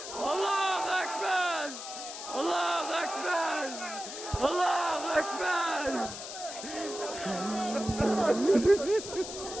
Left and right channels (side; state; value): left; noise; hiss, 9 dB below the sound